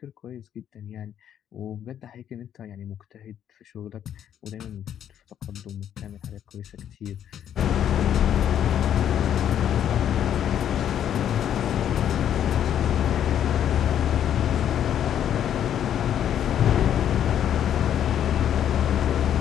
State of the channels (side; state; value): right; quieter; 9.9 dB